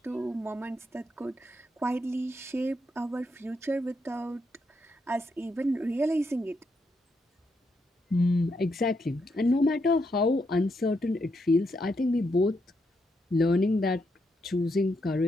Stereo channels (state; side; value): normal; both; correlation 0.80